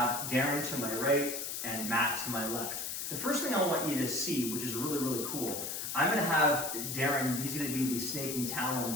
Darren to my right and Matt to my left. The first thing I want you to see, which is really, really cool, I'm going to have Darren, he's going to be the snaking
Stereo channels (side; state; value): left; noise; hiss, 4 dB below the sound